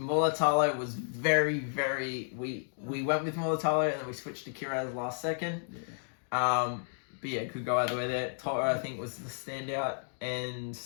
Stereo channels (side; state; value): right; silent; digital silence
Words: was very... We went with Militalo and then we switched to Kiraz last second. Yeah. But yeah, could go either way there. Toto, I think, was the standout. And